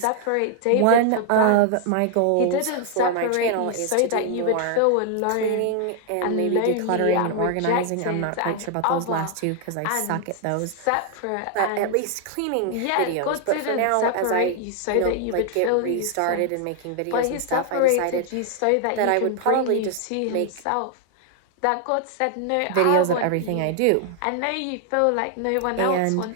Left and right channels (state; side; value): different; both; correlation 0.00